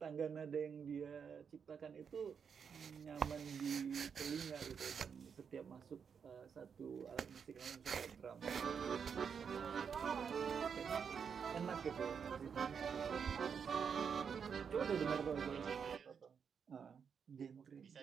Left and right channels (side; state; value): left; quieter; 6.7 dB